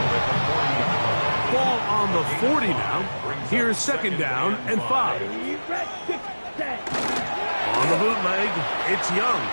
Ball on the 40 now. Here's 2nd down and 5. On the bootleg, it's Young.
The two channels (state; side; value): inverted; both; correlation -1.00